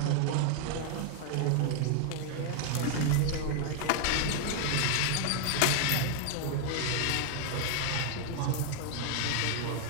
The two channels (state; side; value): different; both; correlation 0.00